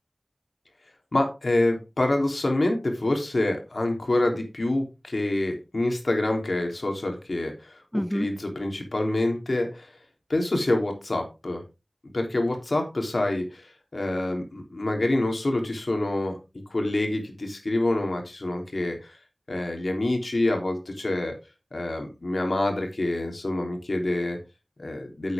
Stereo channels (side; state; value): both; normal; correlation 0.98